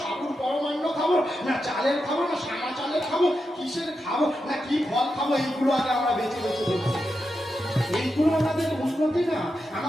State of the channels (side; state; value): both; normal; correlation 0.88